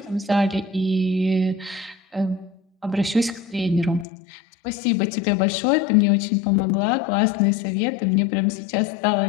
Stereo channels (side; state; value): right; drops out; at 4.0 s